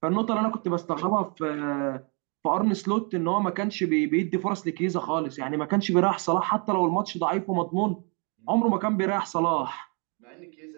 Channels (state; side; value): quieter; left; 35.6 dB